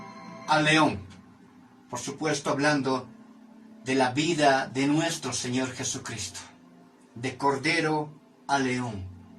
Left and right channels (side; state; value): both; identical; correlation 1.00